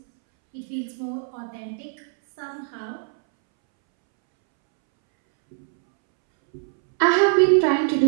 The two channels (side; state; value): left; silent; 64 dB below the other